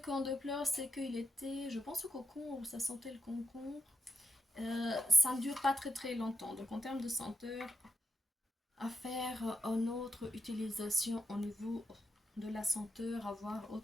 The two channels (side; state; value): both; normal; correlation 0.84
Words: déplore, c'est qu'il était, je pense, au concombre, ça sentait le concombre. Ça ne dure pas très très longtemps. Donc en termes de senteur, à faire une autre utilisation au niveau de la senteur, avoir